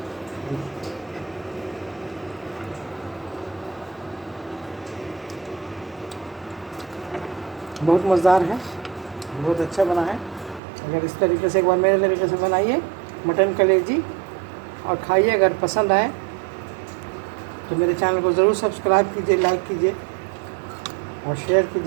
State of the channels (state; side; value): drops out; left; at 10.6 s